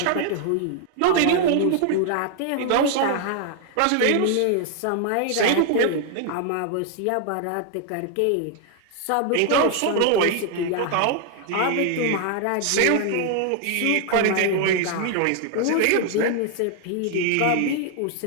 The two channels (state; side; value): different; both; correlation 0.00